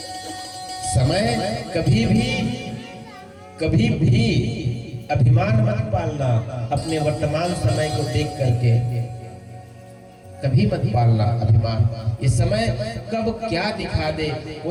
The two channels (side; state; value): both; identical; correlation 1.00